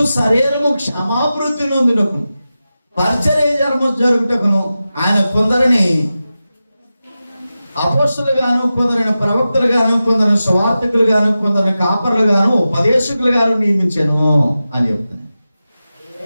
శరీరము క్షమాభివృద్ధి నొందుటకు, పరిచర్య ధర్మం జరుగుటకును ఆయన కొందరిని అపోస్తలులు గాను, కొందరిని ప్రవక్తలు గాను, కొందరిని సువార్తికులు గాను, కొందరిని కాపరులు గాను, ఉపదేశకులు గాను నియమించాను అని చెప్తున్నాను.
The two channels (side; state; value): both; inverted; correlation -0.93